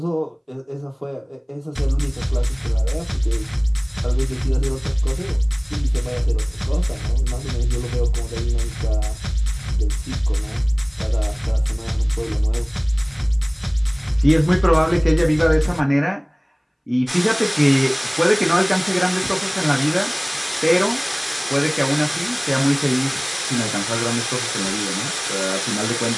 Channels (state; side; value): identical; both; correlation 1.00